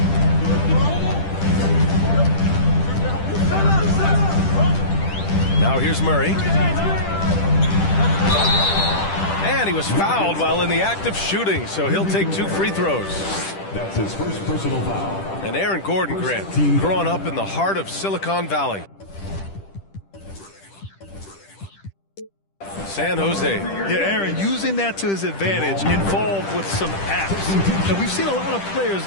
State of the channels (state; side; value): late; right; 10 ms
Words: Now here's Murray. And he was fouled while in the act of shooting, so he'll take 2 free throws. That's his first personal foul. And Aaron Gordon, Grant, growing up in the heart of Silicon Valley. San Jose. Yeah, Aaron, using that to his advantage, involved with some apps. And we've seen a lot of players